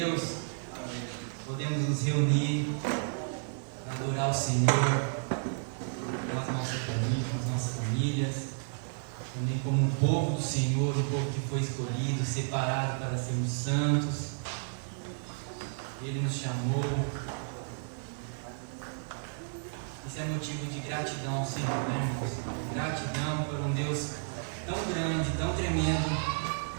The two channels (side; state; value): left; silent; 56 dB below the other